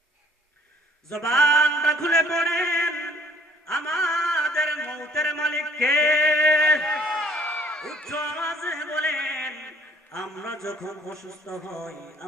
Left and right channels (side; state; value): both; normal; correlation 0.58